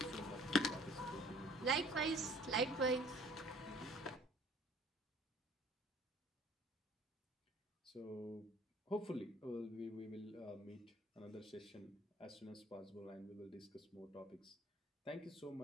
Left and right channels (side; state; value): both; normal; correlation 0.54